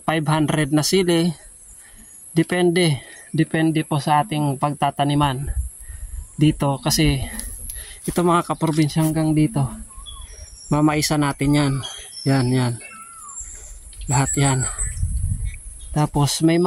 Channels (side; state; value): both; identical; correlation 1.00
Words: 500 na sili. Depende po sa ating pagtataniman dito, kasi ito mga kaprobinsya hanggang dito mamaisa natin yan lahat yan. Tapos may